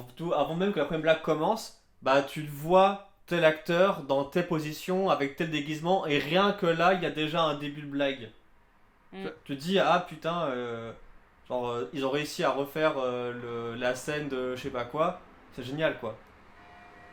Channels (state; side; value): identical; both; correlation 1.00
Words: même que la première blague commence, bah tu le vois tel acteur dans telle position avec tel déguisement et rien que là, il y a déjà un début de blague. Tu te dis ah putain, ils ont réussi à refaire la scène de je sais pas quoi, c'est génial quoi.